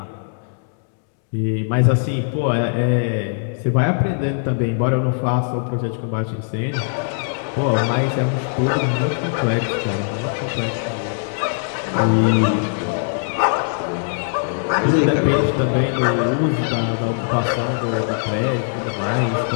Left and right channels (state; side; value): silent; right; 65 dB below the other